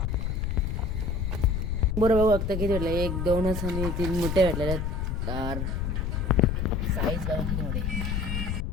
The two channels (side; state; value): left; noise; rumble, 1 dB below the sound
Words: बरोबर बघता किती भेटलं. 1 2 आणि 3 मोठे भेटलेले. साईज बघा किती मोठे.